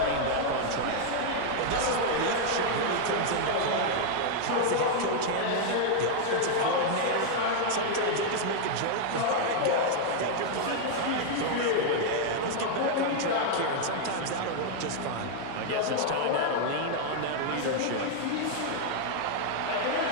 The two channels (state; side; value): different; both; correlation 0.00